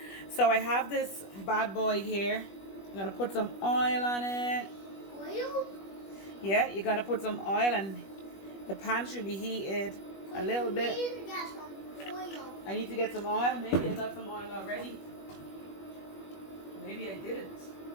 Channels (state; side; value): late; right; 21 ms